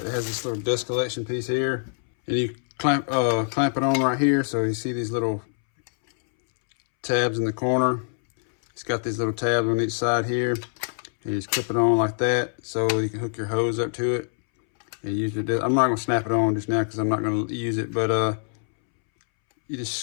it has this little dust collection piece here, and you clamp it on right here. So you see these little tabs in the corner. It's got these little tabs on each side here, and you just clip it on like that, so you can hook your hose up to it and use your I'm not going to snap it on just now because I'm not going to use it, but you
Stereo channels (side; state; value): right; silent; 62 dB below the other